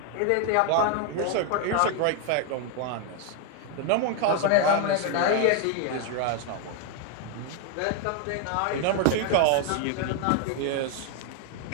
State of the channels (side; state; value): both; different; correlation 0.01